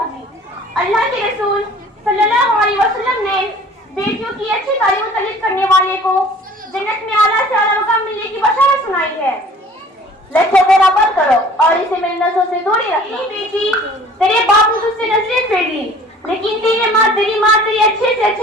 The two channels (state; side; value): normal; both; correlation 0.49